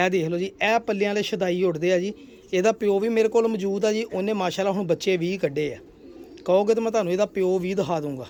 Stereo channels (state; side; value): identical; both; correlation 1.00